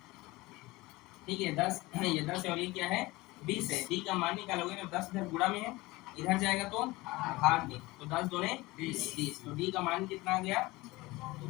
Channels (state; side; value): quieter; right; 20.8 dB